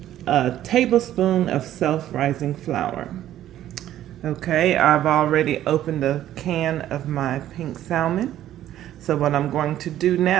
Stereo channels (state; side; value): quieter; left; 12.4 dB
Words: tablespoon of self-rising flour. Okay, I've already opened a can of my pink salmon. So what I'm going to do